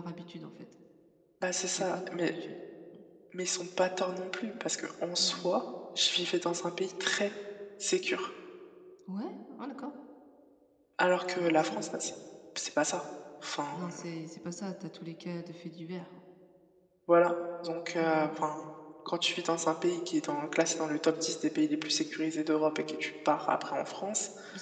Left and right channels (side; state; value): both; identical; correlation 1.00